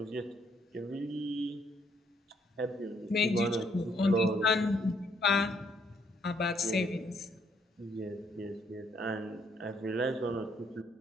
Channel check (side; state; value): both; normal; correlation 0.70